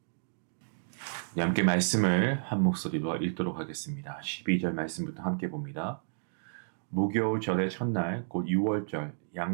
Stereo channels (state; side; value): silent; left; digital silence